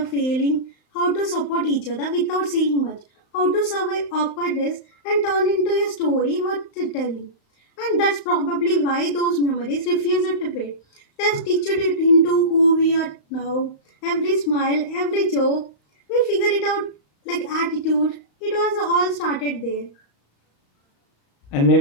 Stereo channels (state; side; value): late; right; 35 ms